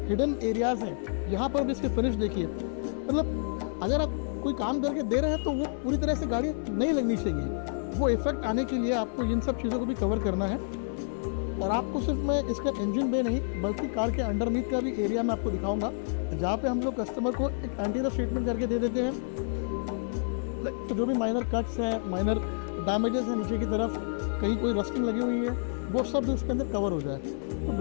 हिडन एरियाज़ हैं यहाँ पर भी इसके फिनिश देखिए। मतलब अगर आप कोई काम करके दे रहे हैं तो वो पूरी तरह से गाड़ी नहीं लगनी चाहिए, वो इफेक्ट आने के लिए आपको इन सब चीज़ों को भी कवर करना है। और आपको सिर्फ मैं इसका इंजन बे नहीं बल्कि कार के अंडरनीथ का भी एरिया मैं आपको दिखाऊंगा, जहाँ पे हम लोग कस्टमर को एक एंटी रस्ट ट्रीटमेंट करके दे देते हैं। तो जो भी माइनर कट्स हैं, माइनर डैमेजेस हैं नीचे की तरफ, कहीं कोई रस्टिंग लगी हुई है, वो सब इसके अंदर कवर हो जाए। तो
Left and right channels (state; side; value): silent; right; 58 dB below the other